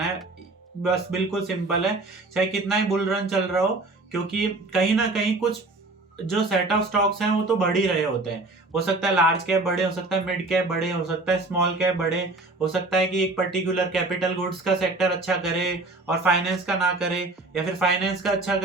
है। बस बिल्कुल सिंपल है, चाहे कितना ही बुल रन चल रहा हो, क्योंकि कहीं ना कहीं कुछ जो सेट ऑफ स्टॉक्स हैं वो तो बढ़ ही रहे होते हैं। हो सकता है लार्ज कैप बड़े, हो सकता है मिड कैप बड़े, हो सकता है स्मॉल कैप बड़े, हो सकता है कि एक पर्टिकुलर कैपिटल गुड्स का सेक्टर अच्छा करे और फाइनेंस का ना करे, या फिर फाइनेंस का अच्छा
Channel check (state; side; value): quieter; left; 3.1 dB